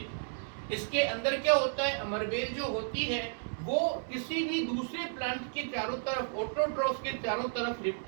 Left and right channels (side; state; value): left; silent; digital silence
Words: इसके अंदर क्या होता है, अमरबेल जो होती है वो किसी भी दूसरे प्लांट के चारों तरफ, ऑटोट्रॉफ के चारों तरफ